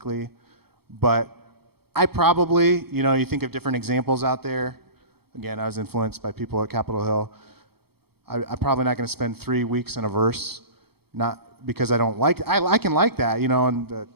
But I probably, you think of different examples out there. Again, I was influenced by people at Capitol Hill. I'm probably not going to spend 3 weeks in a verse, not because I don't like, I can like that, and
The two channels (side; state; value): left; late; 0.96 ms